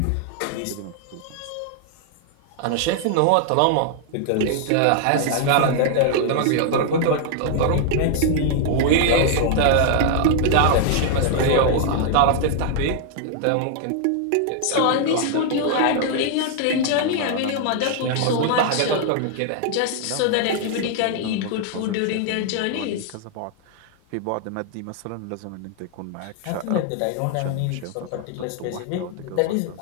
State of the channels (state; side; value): different; both; correlation 0.00